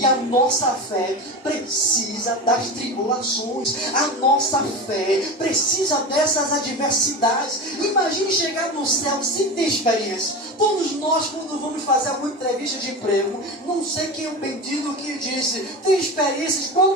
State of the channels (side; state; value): both; normal; correlation 0.25